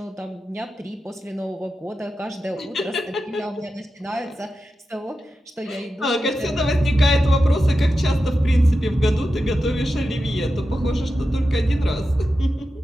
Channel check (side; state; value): both; normal; correlation 0.91